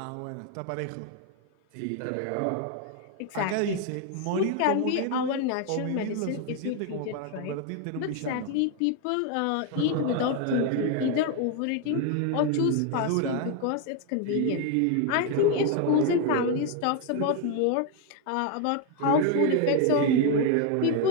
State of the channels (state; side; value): different; both; correlation 0.01